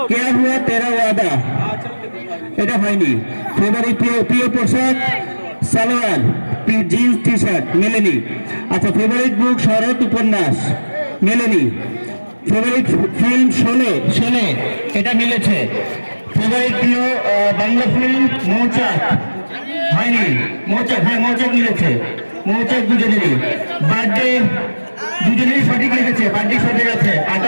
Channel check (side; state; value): both; inverted; correlation -1.00